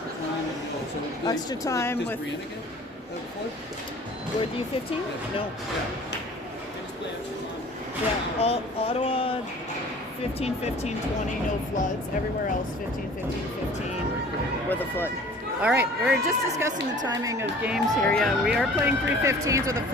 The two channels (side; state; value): both; normal; correlation 0.47